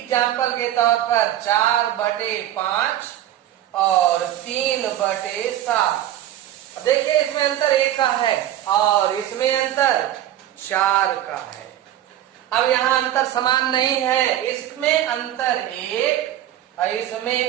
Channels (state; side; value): quieter; left; 12.3 dB